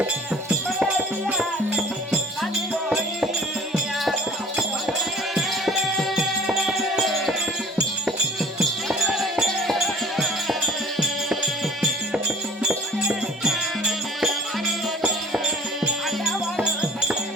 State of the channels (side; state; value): both; normal; correlation 0.49